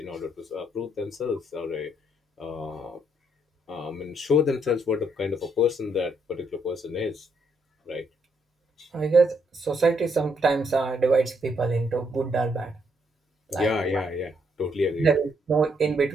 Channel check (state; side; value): normal; both; correlation 0.73